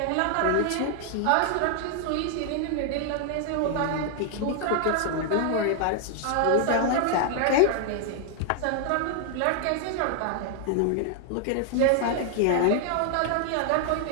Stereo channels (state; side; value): different; both; correlation 0.00